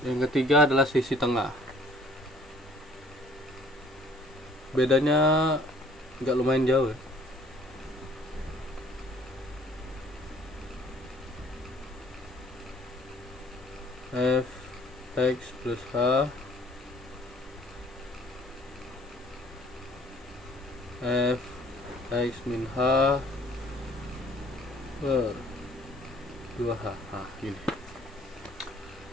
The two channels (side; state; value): both; normal; correlation 0.56